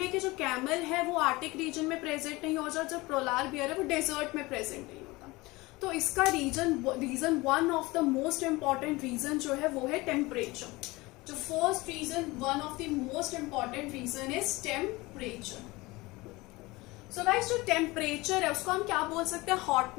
कि जो कैमल है वो आर्टिक रीजन में प्रेजेंट नहीं होता, जो पोलार बियर है वो डेजर्ट में प्रेजेंट नहीं होता. तो इसका reason one of the most important reason जो है वो है टेम्परेचर. जो first reason, one of the most important reason is temperature. So guys, जो टेम्परेचर है उसको हम क्या बोल सकते हैं?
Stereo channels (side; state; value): right; quieter; 22.0 dB